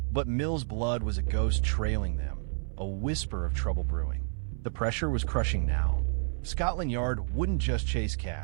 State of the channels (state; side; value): silent; left; 58 dB below the other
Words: But Mills' blood was a ghost trailing them, a whisper of trouble brewing. The pressure was crushing now. Scotland Yard wouldn't just chase